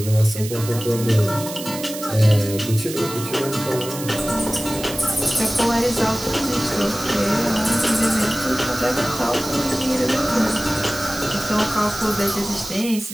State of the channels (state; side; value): noise; right; hiss, 10 dB below the sound